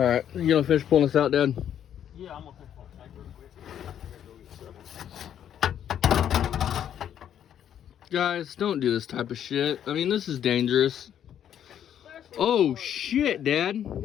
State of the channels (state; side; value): quieter; right; 9.8 dB